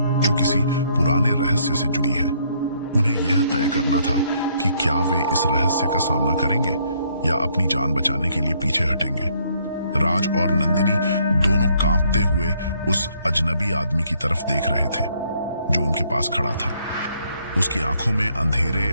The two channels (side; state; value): both; inverted; correlation -0.68